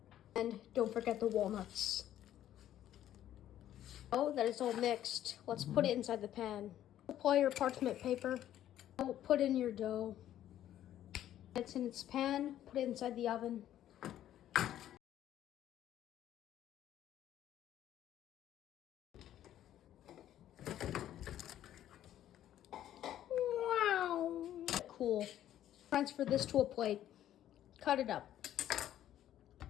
And don't forget the walnuts. Now that it's all mixed, let's put it inside the pan. Apply your parchment paper. Put in your dough. It's in its pan, put it inside the oven. Wow. Cool. Transfer this to a plate. Cut it up.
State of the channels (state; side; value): quieter; right; 11.9 dB